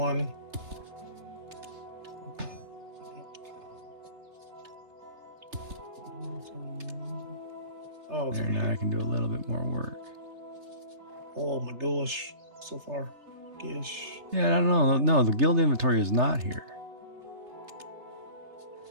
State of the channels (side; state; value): left; late; 3.3 ms